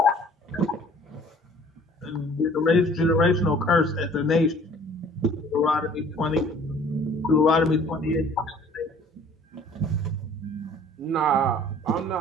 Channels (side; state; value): both; normal; correlation 0.53